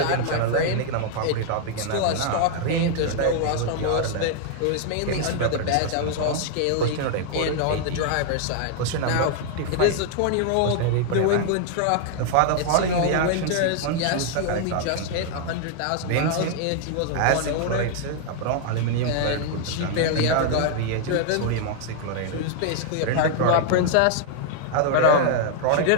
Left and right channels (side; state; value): both; different; correlation -0.01